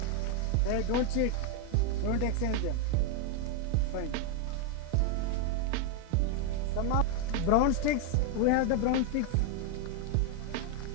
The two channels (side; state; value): both; different; correlation 0.01